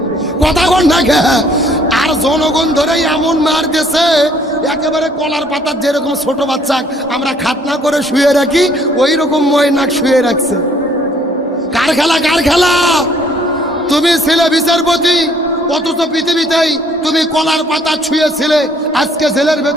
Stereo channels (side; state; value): both; normal; correlation 0.62